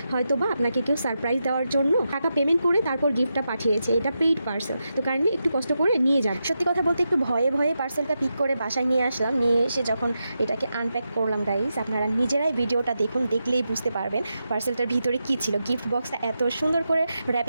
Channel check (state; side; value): inverted; both; correlation -0.87